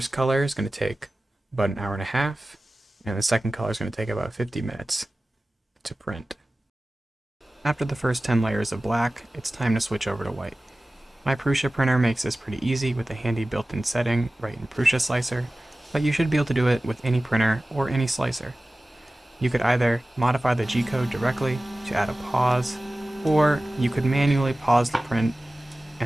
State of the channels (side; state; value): both; normal; correlation 0.97